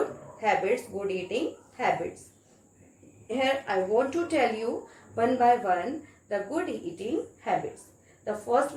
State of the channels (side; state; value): both; identical; correlation 1.00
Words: habits, good eating habits. Here I want to tell you one by one the good eating habits. The first